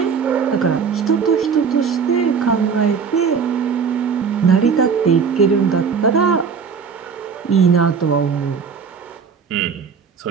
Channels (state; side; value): quieter; left; 6.1 dB